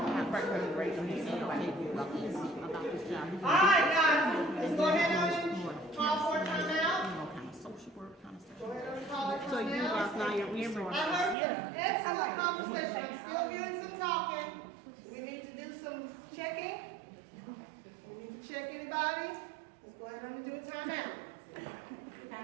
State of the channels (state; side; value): drops out; left; at 11.4 s